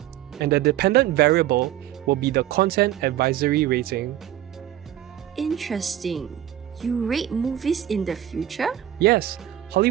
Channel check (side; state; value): left; quieter; 12.1 dB